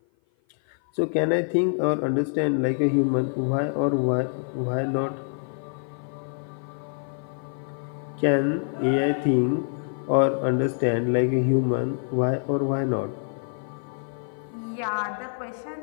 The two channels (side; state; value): right; silent; 56 dB below the other